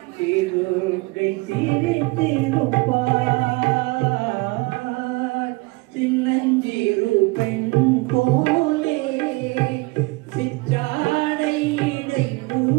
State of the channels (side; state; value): left; quieter; 25.1 dB